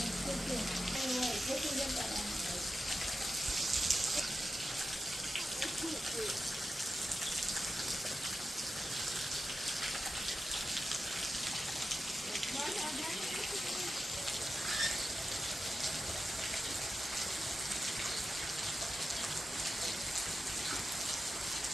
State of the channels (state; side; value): normal; both; correlation 0.91